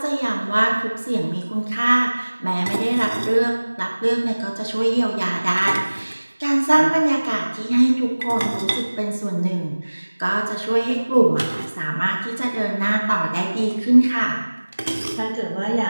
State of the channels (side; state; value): both; inverted; correlation -1.00